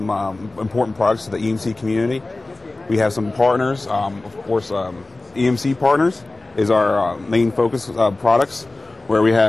important products to the EMC community. We have some partners, of course, EMC partners is our main focus products, where we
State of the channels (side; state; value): right; quieter; 3.0 dB